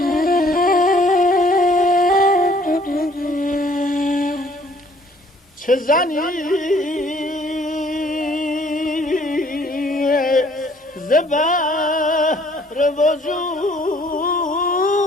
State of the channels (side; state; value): both; normal; correlation 0.59